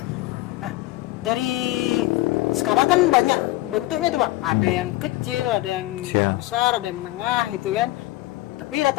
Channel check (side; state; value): right; quieter; 18.2 dB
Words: Nah, dari sekarang kan banyak bentuknya tuh bang. Ada yang kecil, ada yang besar, ada yang menengah gitu kan. Tapi